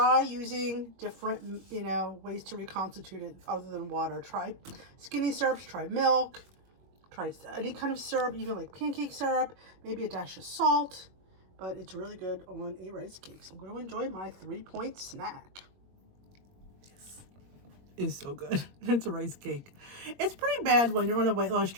using different, ways to reconstitute it other than water. Try skinny syrups, try milk, try any kind of syrup, even like pancake syrup, maybe a dash of salt, but it's really good on a rice cake. So I'm going to enjoy my 3-point snack. Is so good. It's a rice cake. It's pretty bad when you're on a weight loss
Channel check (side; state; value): left; late; 21 ms